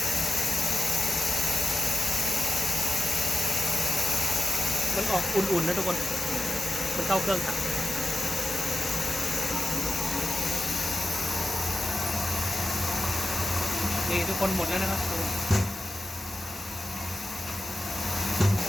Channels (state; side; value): normal; both; correlation 0.93